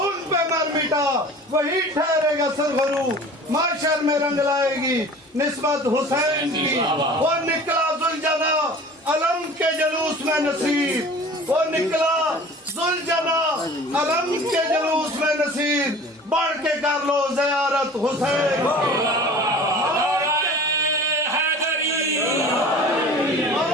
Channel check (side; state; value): both; normal; correlation 0.43